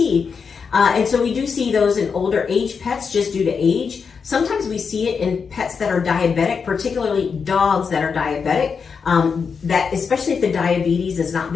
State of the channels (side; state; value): right; quieter; 5.8 dB